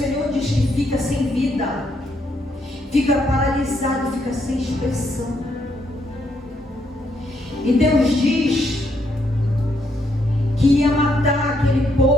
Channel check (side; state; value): both; normal; correlation 0.75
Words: diz que fica sem vida, fica paralisado, fica sem expressão. E Deus diz que ia matar aquele